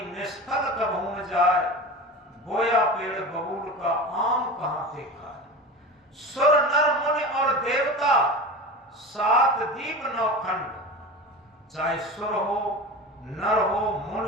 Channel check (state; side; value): normal; both; correlation 0.30